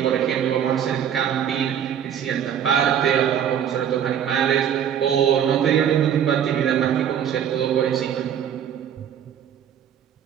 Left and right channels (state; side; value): quieter; left; 9.1 dB